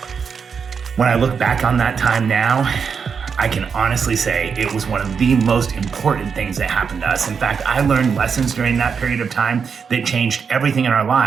When I look back on that time now, I can honestly say it was one of the most important things that happened to us. In fact, I learned lessons during that period of time that changed everything in our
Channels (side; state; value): left; quieter; 6.2 dB